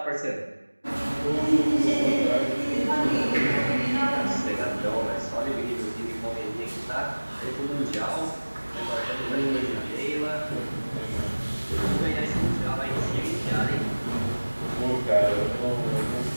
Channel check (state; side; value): inverted; both; correlation -1.00